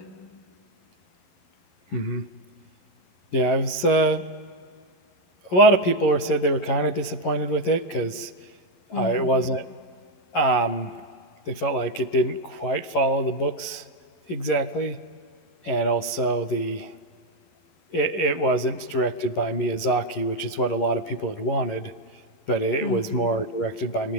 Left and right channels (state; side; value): late; right; 11 ms